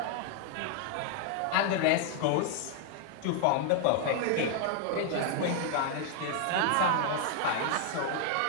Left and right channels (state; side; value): different; both; correlation 0.00